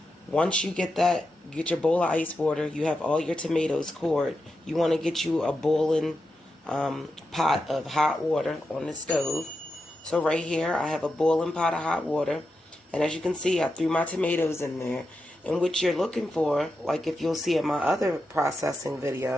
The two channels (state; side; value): normal; both; correlation 0.88